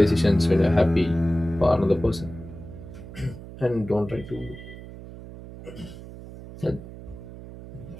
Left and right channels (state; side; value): noise; right; hum, 14 dB below the sound